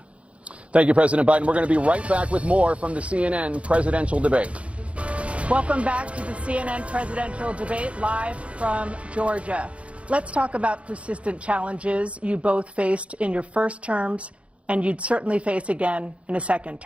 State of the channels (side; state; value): left; late; 0.062 ms